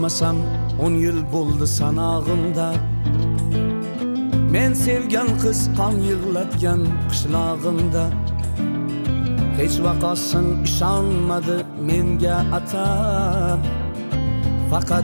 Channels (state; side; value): inverted; both; correlation -1.00